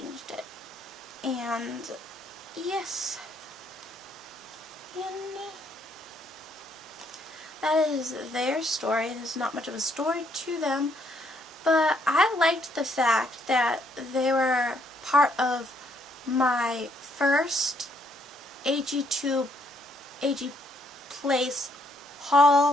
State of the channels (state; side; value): normal; both; correlation 0.70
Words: it. And yes, and that is their story. There's not much of a story to them, but I liked the fact that they were part of my first AG2 AG Place